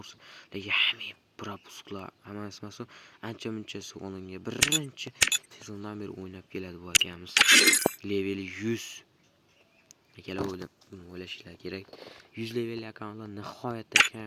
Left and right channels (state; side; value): identical; both; correlation 1.00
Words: lekin hamma propusklar, hammasi maso ancha-munchasi olingan. Birinchi sezondan beri o'ynab keladi bu akamiz. Leveli 100. Akalar o'ylashinglar kerak. 100 levelli akkauntlar nihoyatda